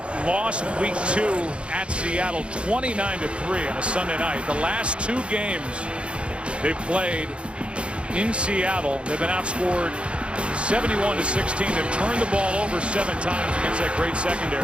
lost week 2 at Seattle 29-3 on a Sunday night. The last 2 games they've played in Seattle, they've been outscored 71-16. They've turned the ball over 7 times against that great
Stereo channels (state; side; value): late; left; 0.058 ms